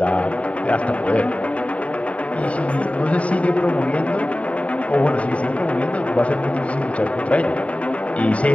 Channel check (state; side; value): late; right; 0.065 ms